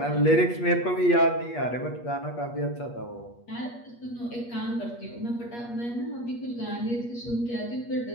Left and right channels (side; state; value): right; late; 8.4 ms